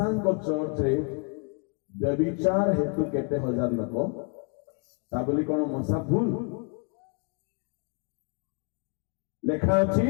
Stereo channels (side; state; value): right; quieter; 35.4 dB